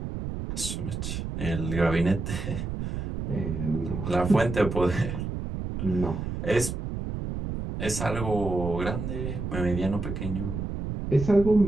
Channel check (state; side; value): noise; right; rumble, 5 dB below the sound